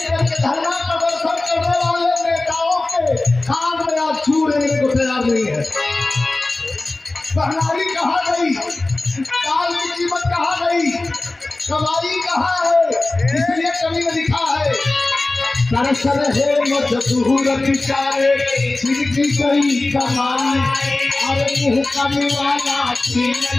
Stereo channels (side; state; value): right; quieter; 3.0 dB